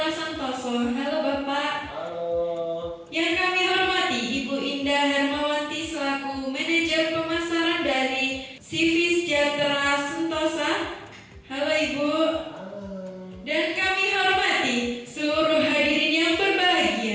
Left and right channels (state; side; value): identical; both; correlation 1.00